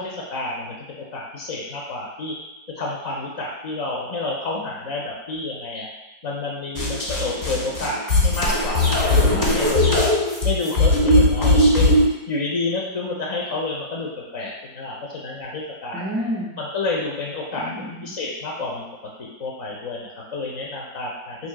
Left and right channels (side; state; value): left; late; 4.3 ms